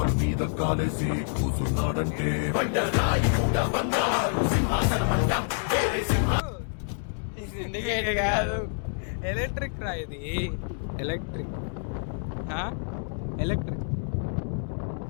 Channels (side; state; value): right; silent; 58 dB below the other